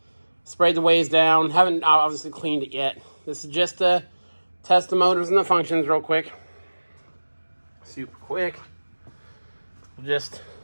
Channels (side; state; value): both; inverted; correlation -1.00